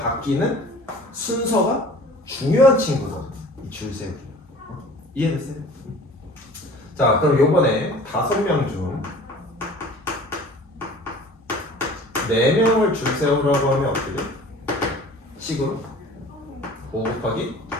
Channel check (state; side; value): normal; both; correlation 0.45